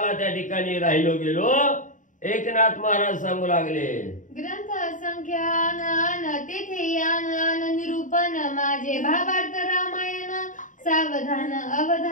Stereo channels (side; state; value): right; late; 0.37 ms